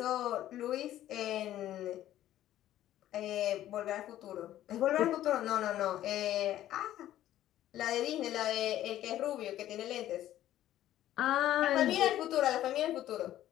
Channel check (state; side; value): quieter; right; 13.0 dB